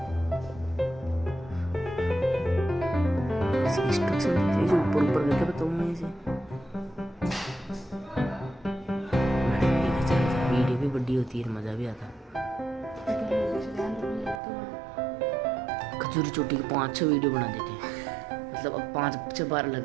इंस्ट्रक्शन ऊपर ऊपर करके बताऊँ मैं इसे। वीडियो भी बड़ी होती है, मजा भी आता। खजूरी चोटी की 5-6 वीडियो बना देते हैं, मतलब अब 5 बार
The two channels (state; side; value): drops out; left; at 14.4 s